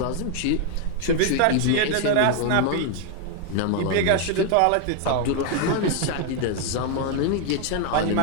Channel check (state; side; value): different; both; correlation 0.00